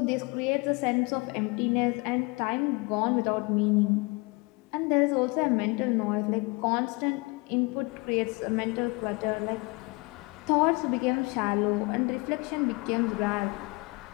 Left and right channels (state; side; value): quieter; right; 27.1 dB